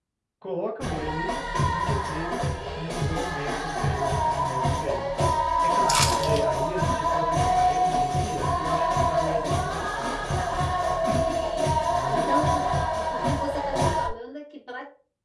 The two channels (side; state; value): both; identical; correlation 1.00